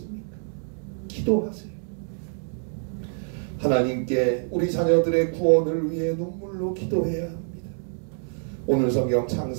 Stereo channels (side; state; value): left; silent; 61 dB below the other